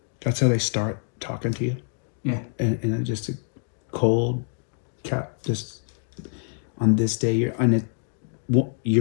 That's how they start talking to you, Yeah. and just a cold cap. Just on this day, your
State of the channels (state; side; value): silent; right; 61 dB below the other